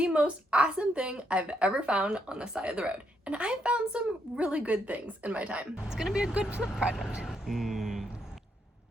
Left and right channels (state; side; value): normal; both; correlation 0.77